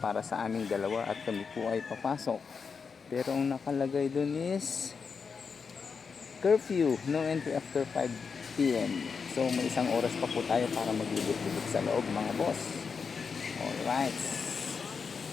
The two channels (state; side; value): quieter; right; 5.6 dB